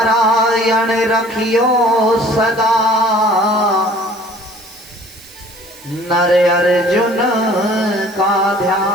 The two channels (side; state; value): right; noise; hiss, 21 dB below the sound